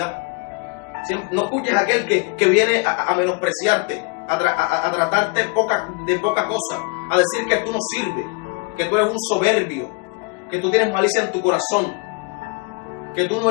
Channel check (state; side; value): quieter; right; 30.6 dB